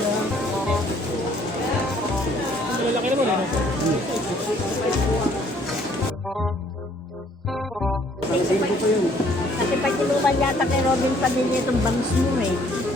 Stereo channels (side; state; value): both; normal; correlation 0.62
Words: Malaki naman eh. Kasi pag inuman yata kay Robin Padilla itong bangs mo eh.